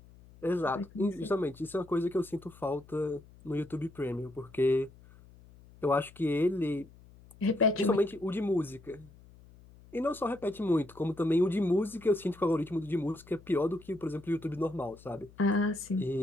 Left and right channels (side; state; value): left; noise; hum, 23 dB below the sound